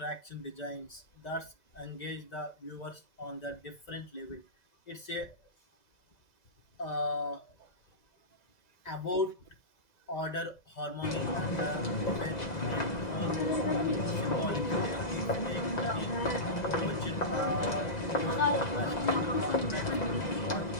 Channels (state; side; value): late; right; 2.0 ms